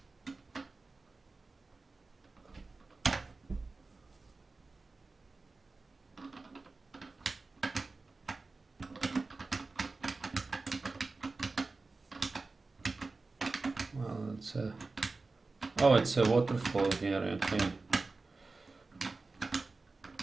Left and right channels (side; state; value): left; quieter; 3.7 dB